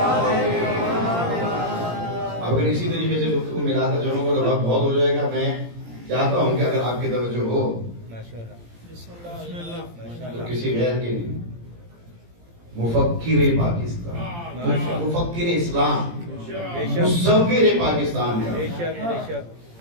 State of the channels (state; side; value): late; left; 17 ms